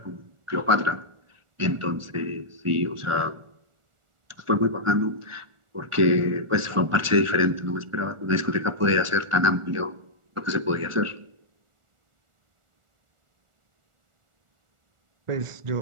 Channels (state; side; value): late; left; 1.4 ms